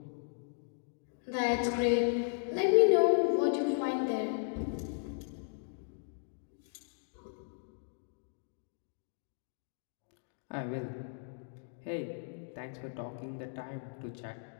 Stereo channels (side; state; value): right; silent; digital silence